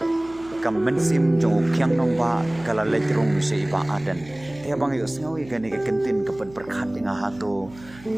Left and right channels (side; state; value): right; noise; hum, 21 dB below the sound